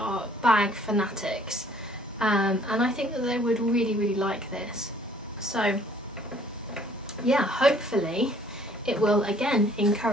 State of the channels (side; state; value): both; normal; correlation 0.58